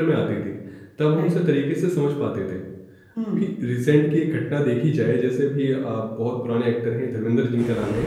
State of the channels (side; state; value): both; identical; correlation 1.00